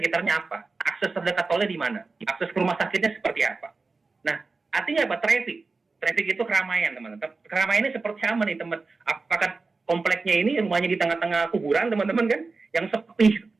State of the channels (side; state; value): left; quieter; 4.0 dB